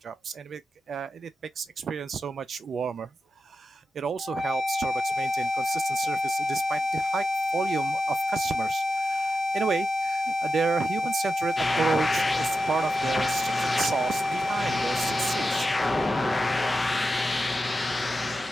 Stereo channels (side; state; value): both; normal; correlation 0.90